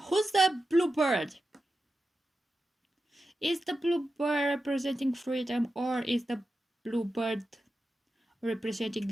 the bluebird? Is the bluebird representing freedom, or is the bluebird representing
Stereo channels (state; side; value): normal; both; correlation 0.91